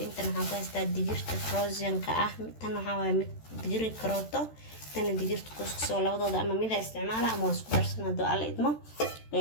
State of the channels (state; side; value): late; right; 13 ms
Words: ku haystaa digirta frozenka tan waxaa waa mid digir karooto tan digirta kuskusoo labadooda ama mid isticmaala ama isku darsan hado alla idmo